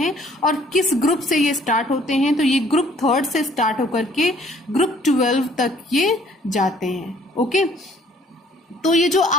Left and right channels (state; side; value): normal; both; correlation 0.59